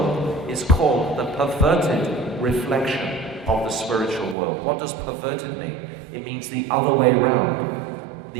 is called the perverted reflection of the spiritual world. What does perverted mean? It means the other way around.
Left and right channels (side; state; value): left; drops out; at 4.4 s